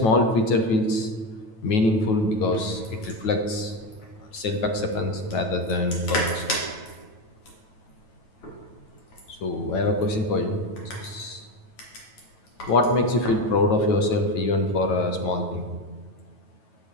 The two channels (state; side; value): late; right; 9.2 ms